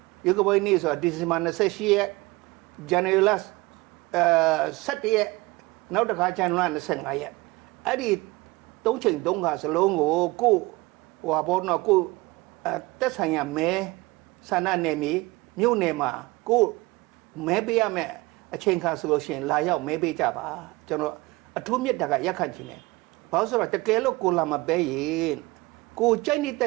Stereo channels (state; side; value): quieter; left; 22.3 dB